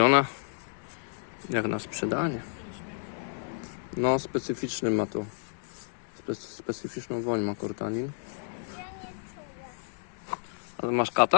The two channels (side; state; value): right; silent; digital silence